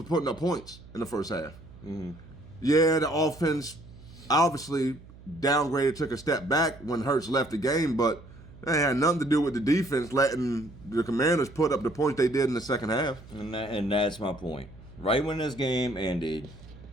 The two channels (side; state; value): right; noise; hum, 20 dB below the sound